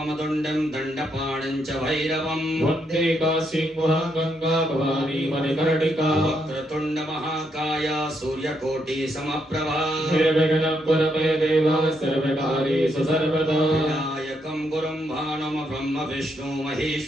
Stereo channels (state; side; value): normal; both; correlation 0.78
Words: दण्डं दण्डपाणं च भैरवं वन्दे काशीं वहां गंगा भवानी मणिकर्णिका वक्रतुण्ड महाकाय सूर्यकोटि समप्रभा निर्विघ्नं कुरु मे देव सर्वकार्येषु सर्वदा विनायकं गुरुं भानुं ब्रह्म विष्णु